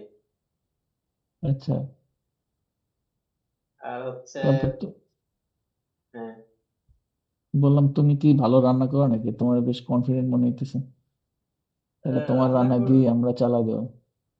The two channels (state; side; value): identical; both; correlation 1.00